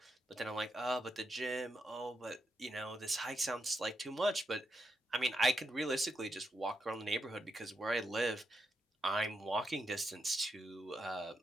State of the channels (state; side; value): normal; both; correlation 0.83